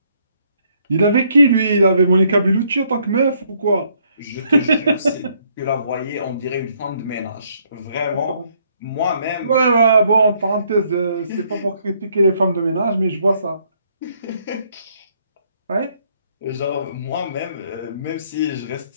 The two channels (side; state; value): both; inverted; correlation -0.69